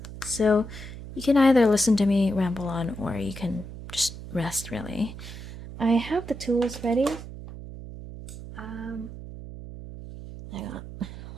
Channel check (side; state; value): right; noise; hum, 12 dB below the sound